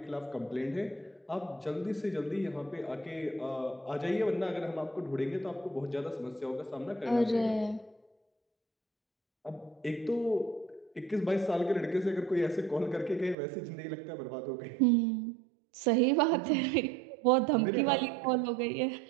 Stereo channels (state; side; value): drops out; left; at 13.4 s